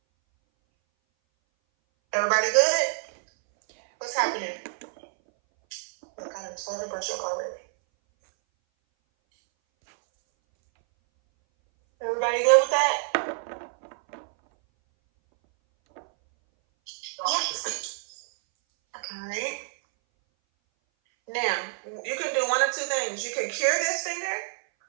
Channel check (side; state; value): left; silent; 59 dB below the other